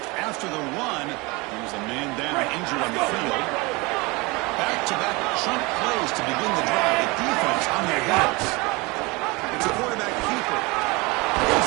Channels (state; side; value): quieter; left; 25.4 dB